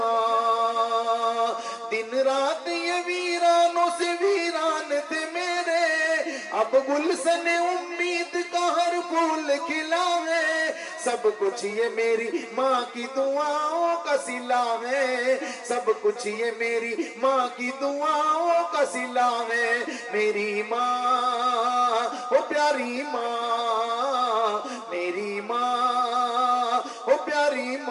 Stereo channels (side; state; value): both; identical; correlation 1.00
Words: دن رات یہ ویرانوں سے ویران تھے میرے، اب گلشن امید کا ہر پھول کھلا ہے سب کچھ یہ میری ماں کی دعاؤں کا صلہ ہے سب کچھ یہ میری ماں کی دعاؤں کا صلہ ہے میری ماں او پیاری ماں میری ماں او پیاری